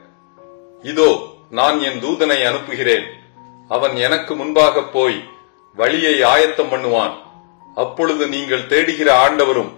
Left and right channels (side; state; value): right; silent; 69 dB below the other